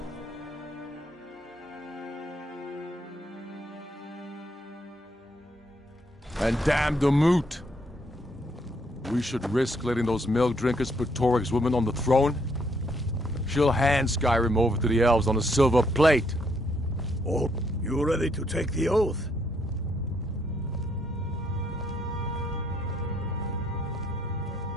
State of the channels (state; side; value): normal; both; correlation 0.72